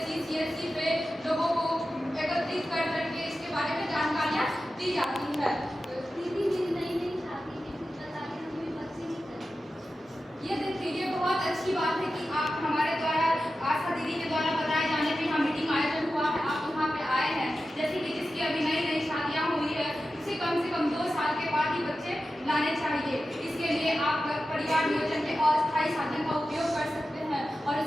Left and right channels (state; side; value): normal; both; correlation 0.93